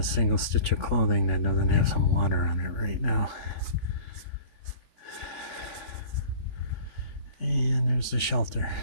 single stitch of clothing that doesn't have some water on it right now. And there's the shelter,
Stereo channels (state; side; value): late; right; 3.5 ms